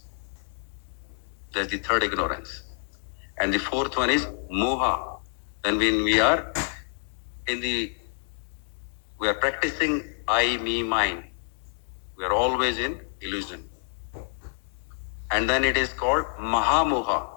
That's the third ignorance. And the fourth one is Moha. Then when we are practicing I, me, mine, we are always in illusion. And then it is called Mahamoha.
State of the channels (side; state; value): right; silent; 60 dB below the other